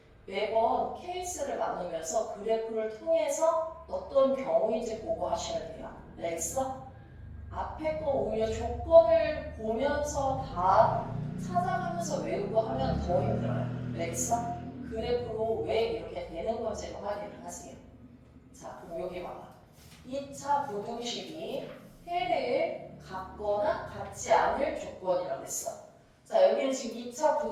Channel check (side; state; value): both; identical; correlation 1.00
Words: 매번 케이스를 나누면서 그래프를 통해서 어떤 경우인지 보고 하시면 돼요. 알겠어? 앞에 거 오히려 조건을 보면서 다 찾아가면서 외우고 하면 더 힘들어요. 알겠어? 그래프로 왜 이렇게 되는 건지를 확인을 하세요. 자, 그럼 여기 봐봐. 2차 부등식이 해를 같거나 같지 않을 조건이라고 했어. 자, 여기는 지금 2차